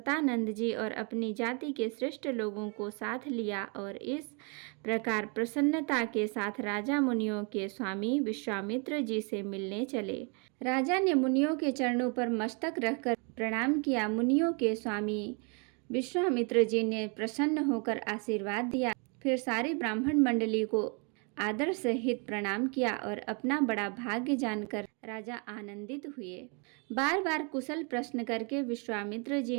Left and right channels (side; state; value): left; quieter; 35.0 dB